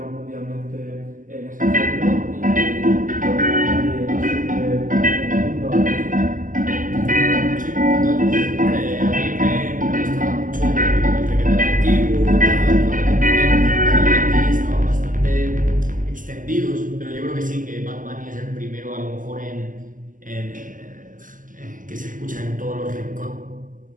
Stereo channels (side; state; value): left; late; 0.38 ms